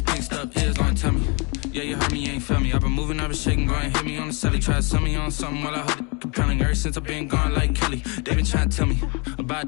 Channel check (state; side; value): quieter; right; 32.2 dB